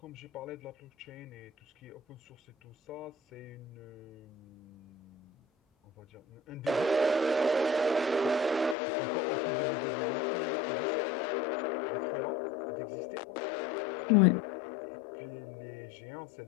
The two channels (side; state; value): right; drops out; at 8.8 s